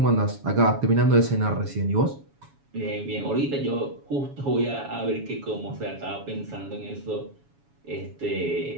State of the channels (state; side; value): late; left; 7.1 ms